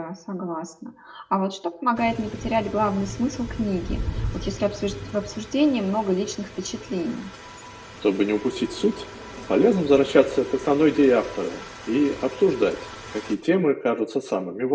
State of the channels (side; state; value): both; identical; correlation 1.00